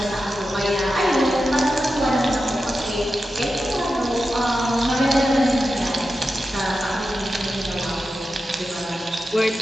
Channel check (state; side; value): normal; both; correlation 0.91